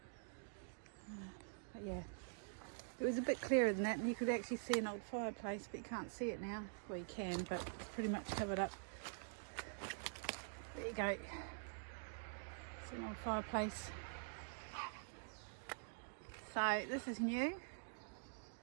But yeah, it was a bit clearer than that, and you could actually see an old fireplace, but you can't see it now. Well, you can, but it's pretty much covered up. There you go. It's an old fireplace. So this is new.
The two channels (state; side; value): silent; left; digital silence